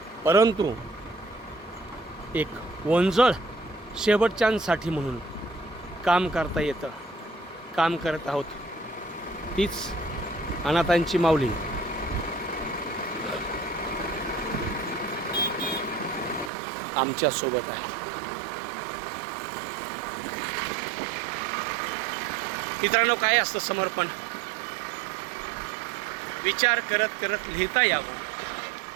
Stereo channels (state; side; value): drops out; left; at 16.5 s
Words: परंतु एक वंजळ शेवटच्यांसाठी म्हणून काम करता येतं. काम करत आहोत. तीच अनाथांची माऊली आमच्या सोबत आहे. मित्रांनो, काय असतं समर्पण? विचार करत करत लिहिता यावं,